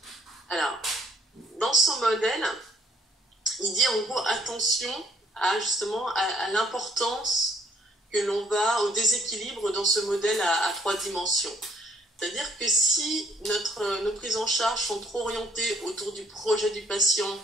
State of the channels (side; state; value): both; normal; correlation 0.63